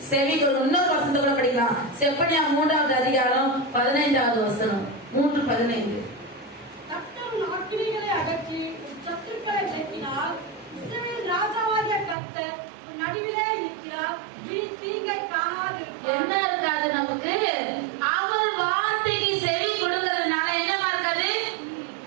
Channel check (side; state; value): left; drops out; at 12.2 s